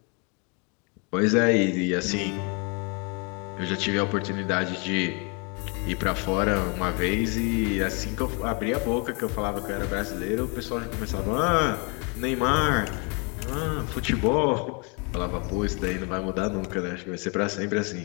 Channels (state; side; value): quieter; right; 34.0 dB